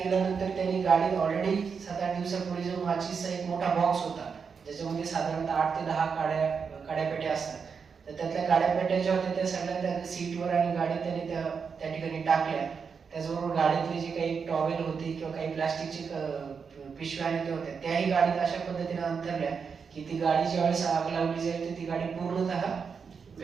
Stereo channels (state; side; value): quieter; left; 5.9 dB